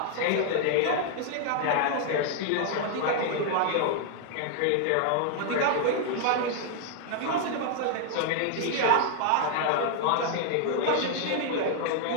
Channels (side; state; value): both; different; correlation 0.00